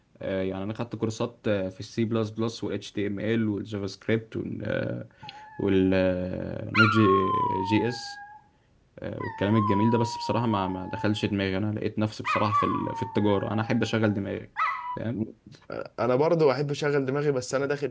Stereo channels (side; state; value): both; identical; correlation 1.00